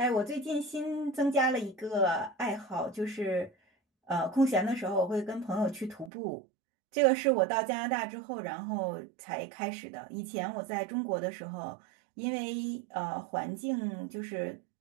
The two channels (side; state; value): left; drops out; at 6.1 s